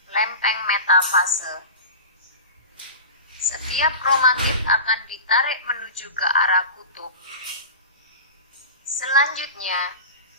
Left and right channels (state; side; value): inverted; both; correlation -0.31